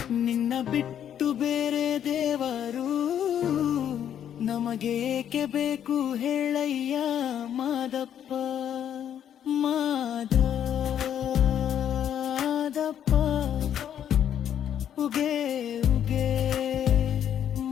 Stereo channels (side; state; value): right; quieter; 9.7 dB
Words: ನಿನ್ನ ಬಿಟ್ಟು ಬೇರೆ ದೇವರು ನಮಗೆ ಏಕೆ ಬೇಕು ಹೇಳಯ್ಯ ಮಾದಪ್ಪ ಮಾದಪ್ಪ ಉಗೆ ಉಗೆ